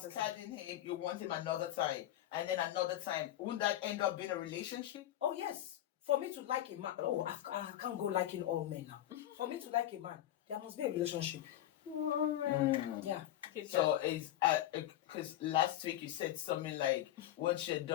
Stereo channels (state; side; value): quieter; right; 13.0 dB